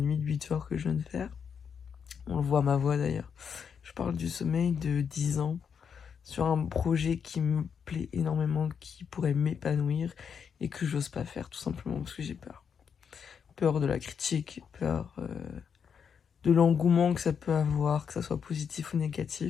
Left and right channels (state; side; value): quieter; right; 6.9 dB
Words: de 8 heures que je viens de faire. On le voit à ma voix d'ailleurs. Je parle du sommeil de 10 ans sur un projet qui me plaît énormément, qui pourrait m'épanouir et que j'ose pas faire tout simplement parce que j'ai peur. Peur de la critique, peur de l'engouement que ça peut avoir, que ça soit positif ou